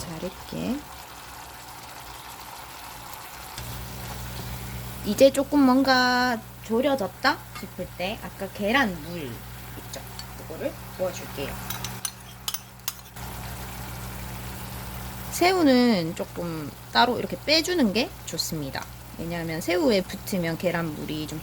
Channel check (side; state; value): both; identical; correlation 1.00